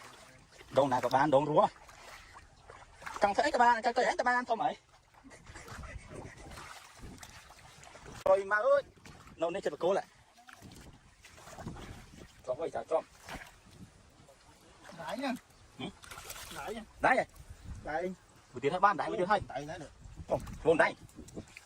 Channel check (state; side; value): identical; both; correlation 1.00